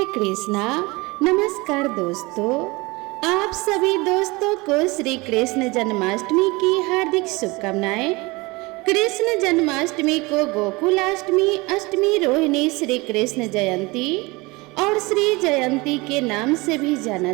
कृष्णा। नमस्कार दोस्तों, आप सभी दोस्तों को श्री कृष्ण जन्माष्टमी की हार्दिक शुभकामनाएं। कृष्ण जन्माष्टमी को गोकुलाष्टमी, अष्टमी रोहिणी, श्री कृष्ण जयंती और श्री जयंती के नाम से भी जाना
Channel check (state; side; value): quieter; left; 24.1 dB